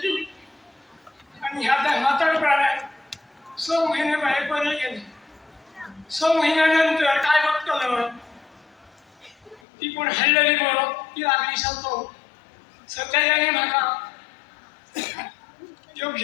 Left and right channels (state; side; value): drops out; right; at 9.6 s